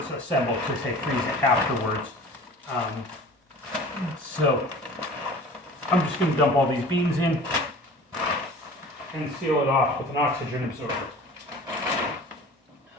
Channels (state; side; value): normal; both; correlation 0.41